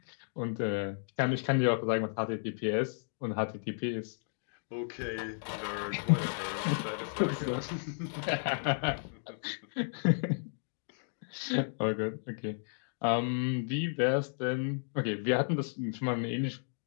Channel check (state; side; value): silent; right; digital silence